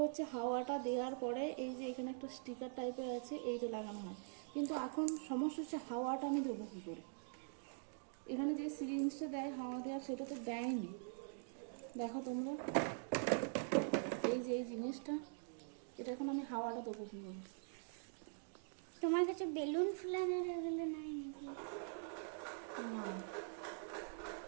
হচ্ছে হাওয়াটা দেওয়ার পরে এই যে এখানে একটা স্টিকার টাইপের আছে, এইটা লাগানো হয়। কিন্তু এখন সমস্যা হচ্ছে হাওয়াটা আমি দেবো কী করে? এখানে যে সিরিঞ্জটা দেয় হাওয়া দেওয়ার, সেটা তো দেয়নি। দেখো তোমরা, এই যে এই জিনিসটা, এটা এখন আমি হাওয়াটা দেবো কী করে? তোমার কাছে বেলুন ফুলানোর এগুলো নাই নাকি? না,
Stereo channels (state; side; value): silent; left; digital silence